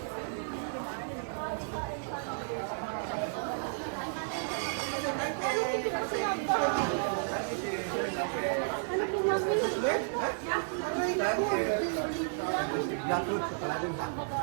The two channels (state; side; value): silent; left; digital silence